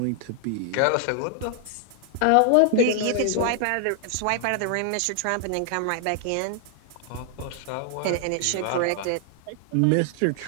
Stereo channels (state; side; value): different; both; correlation 0.00